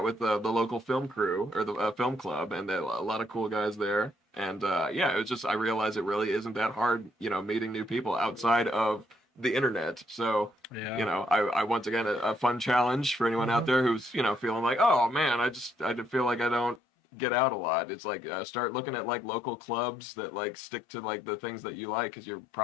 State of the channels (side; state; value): right; drops out; at 16.8 s